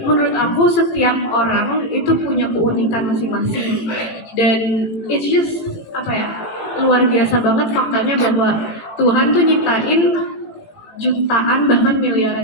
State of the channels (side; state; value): right; late; 18 ms